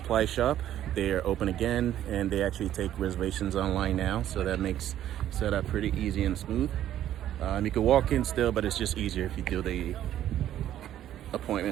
shop, they are open again, and they actually take reservations online now, so that makes setup pretty easy and smooth. You can walk in still, but it's just easier if you do the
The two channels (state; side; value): quieter; left; 11.8 dB